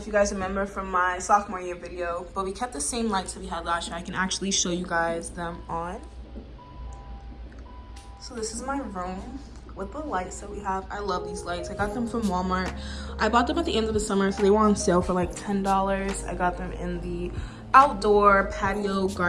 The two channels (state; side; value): identical; both; correlation 1.00